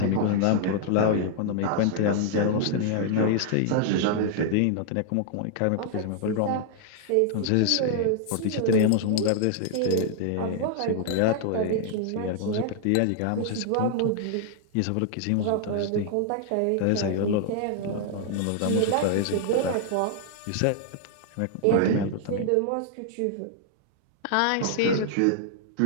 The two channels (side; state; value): both; different; correlation -0.01